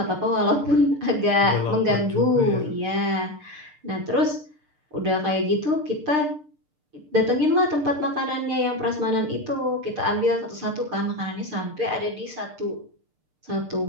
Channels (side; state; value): left; late; 6.6 ms